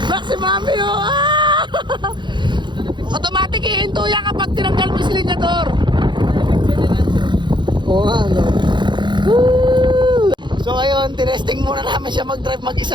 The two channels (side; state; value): left; late; 0.22 ms